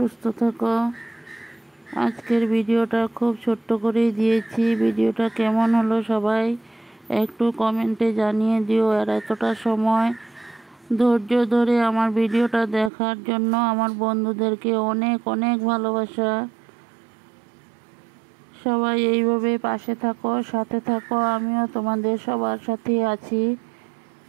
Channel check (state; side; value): drops out; left; at 12.9 s